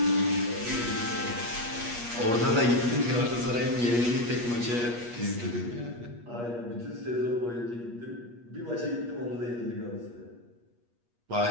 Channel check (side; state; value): left; late; 8.4 ms